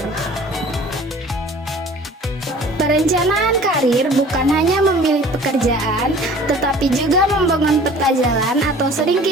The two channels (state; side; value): normal; both; correlation 0.47